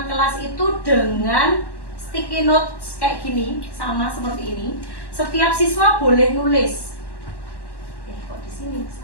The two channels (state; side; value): late; right; 1.1 ms